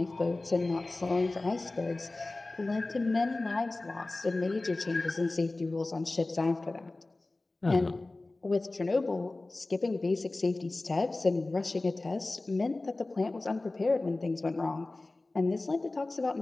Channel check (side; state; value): right; quieter; 3.0 dB